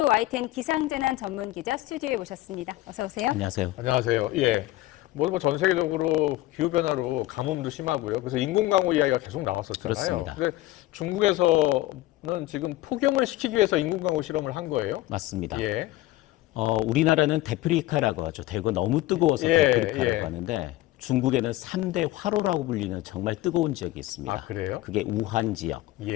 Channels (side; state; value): right; quieter; 16.7 dB